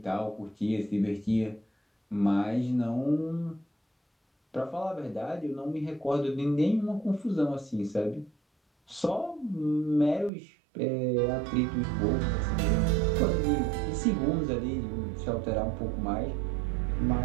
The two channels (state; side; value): drops out; left; at 10.3 s